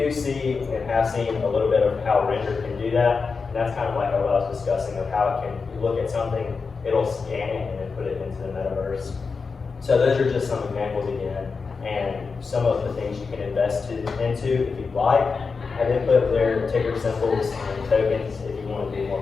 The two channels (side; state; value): right; quieter; 4.9 dB